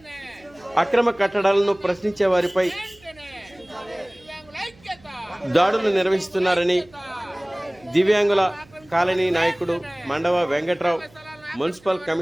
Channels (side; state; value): right; noise; hum, 27 dB below the sound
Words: అక్రమ కట్టడాలను ప్రశ్నించే వారిపై దాడులు నిర్వహిస్తున్నారని దివ్యాంగుల కాలనీ నాయకుడు మండవ వెంకట్రావు మున్సిపల్